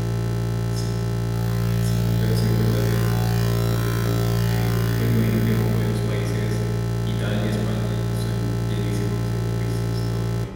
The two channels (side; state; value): both; identical; correlation 1.00